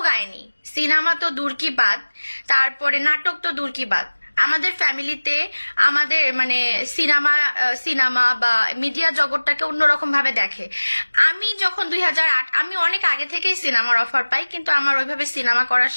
গায়নি, সিনেমা তো দূর কি বাদ, তারপরে নাটক তো দূর কি বাদ। আমাদের ফ্যামিলিতে আমাদের মানে সিনেমা বা মিডিয়া জগৎটাকে অন্যরকম ভাবে দেখে। আমি যখন 2008, আমি অনেক আগে থেকেই সিনেমার অফার পাই, কিন্তু আমার ওইভাবে সিনেমা করার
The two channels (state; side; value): inverted; both; correlation -1.00